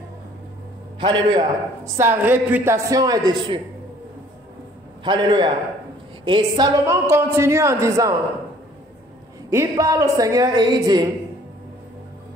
Alléluia. Sa réputation est dessus. Alléluia. Et Salomon continue en disant, il parle au Seigneur et il dit,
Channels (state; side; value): normal; both; correlation 0.56